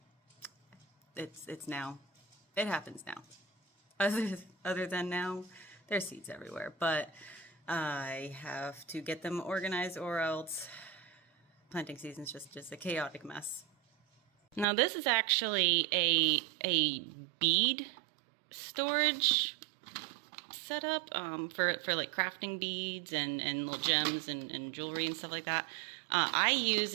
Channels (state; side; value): drops out; left; at 14.7 s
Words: it's now. It happens now. Other than now, there's seeds everywhere, but I have to get them organized, or else planting season's just a chaotic mess. Now this is actually a bead storage setup for like crafting beads and little gems and jewelry and stuff like that. I use